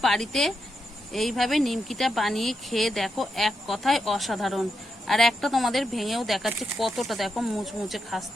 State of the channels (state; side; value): normal; both; correlation 0.85